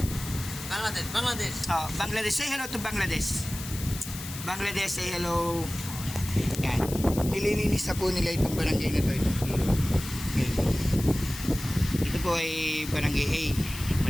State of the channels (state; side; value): noise; left; hiss, 10 dB below the sound